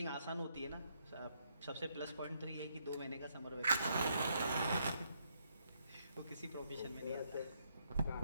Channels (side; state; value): both; inverted; correlation -0.75